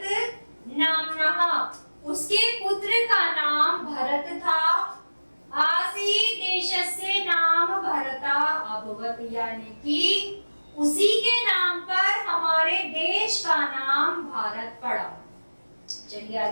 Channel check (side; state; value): both; inverted; correlation -1.00